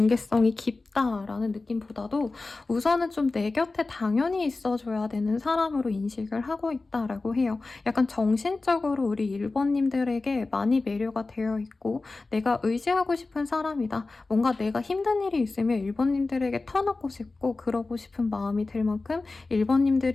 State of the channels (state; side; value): quieter; right; 3.5 dB